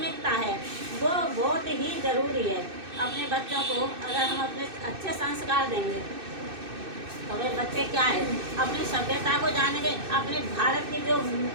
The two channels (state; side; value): late; left; 2.6 ms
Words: है, वो बहुत ही ज़रूरी है। अपने बच्चों को अगर हम अपने अच्छे संस्कार देंगे तो वे बच्चे क्या है, अपनी सभ्यता को जानेंगे। अपने भारत की जो